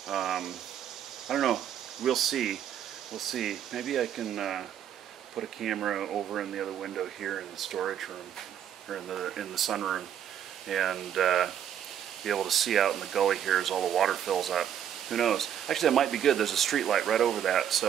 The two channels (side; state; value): left; quieter; 9.6 dB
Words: I don't know. We'll see. We'll see. Maybe I can put a camera over in the other window here in the storage room, or in the sunroom, and be able to see out in the gully here as all the water fills up. Who knows? Actually, that might be good. There's a street light right over that,